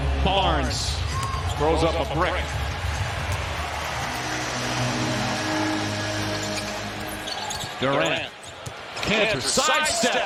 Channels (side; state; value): both; identical; correlation 1.00